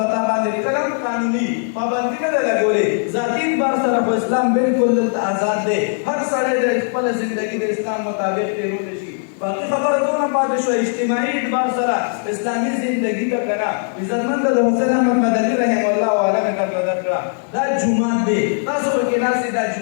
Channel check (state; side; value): silent; right; 67 dB below the other